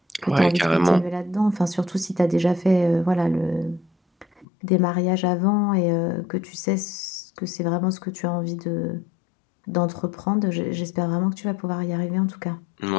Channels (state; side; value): drops out; right; at 4.5 s